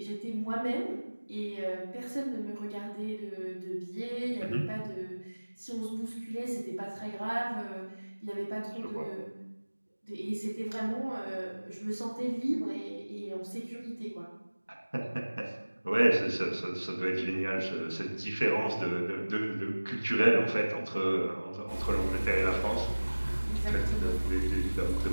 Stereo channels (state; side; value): inverted; both; correlation -1.00